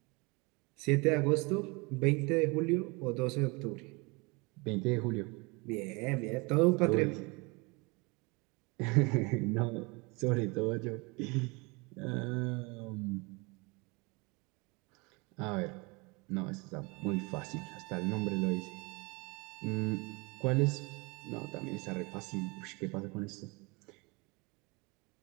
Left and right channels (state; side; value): quieter; left; 27.8 dB